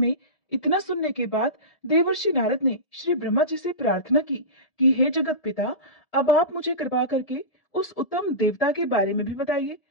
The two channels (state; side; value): late; right; 1.7 ms